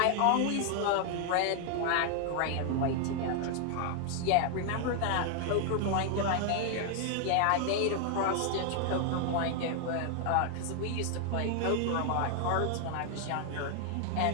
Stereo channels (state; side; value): different; both; correlation 0.00